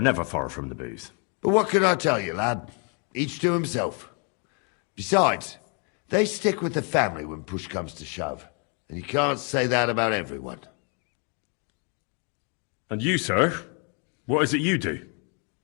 never far from the booze. But what can I tell you, lad? Each to himself. Besides, they stick with the family when push comes to shove. And you can't say that about everyone. And you, sir? What is it you do?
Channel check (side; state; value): right; quieter; 37.5 dB